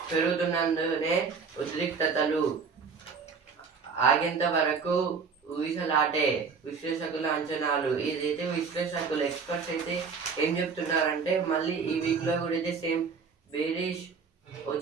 పెరుగుతున్నందునే ఉద్రిక్తతలు ఆగేంత వరకు ఊగిసలాటే విశ్లేషకుల అంచనాలు. ఇదైతే విశ్లేషకులు ఎక్స్పర్ట్స్ అయితే ఏం చెప్తున్నారంటే మళ్ళీ ఈ వీక్లో కూడా అయితే సేమ్ బేరిష్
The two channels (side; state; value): left; quieter; 5.5 dB